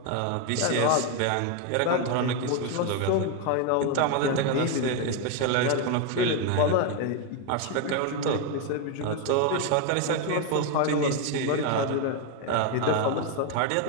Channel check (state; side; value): different; both; correlation 0.01